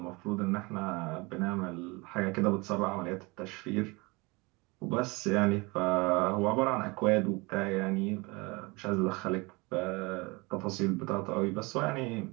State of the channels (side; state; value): left; quieter; 25.9 dB